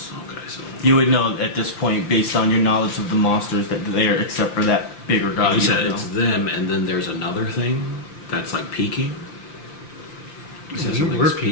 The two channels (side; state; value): right; late; 5.8 ms